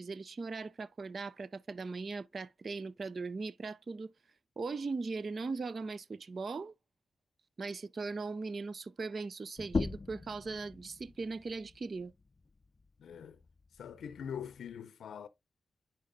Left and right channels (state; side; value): normal; both; correlation 0.90